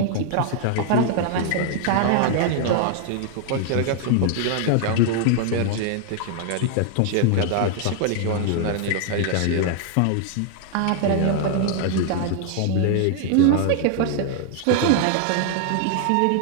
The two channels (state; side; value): different; both; correlation 0.00